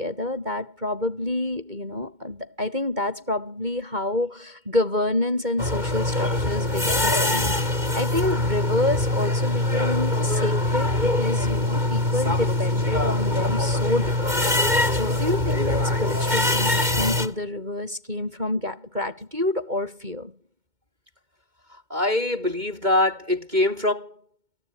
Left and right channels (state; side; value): late; left; 2.2 ms